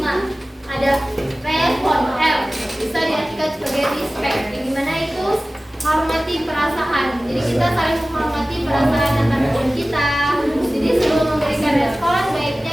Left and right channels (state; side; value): normal; both; correlation 0.97